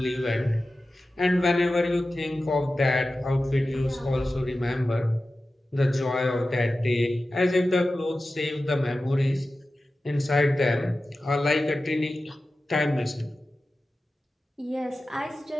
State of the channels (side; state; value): both; normal; correlation 0.94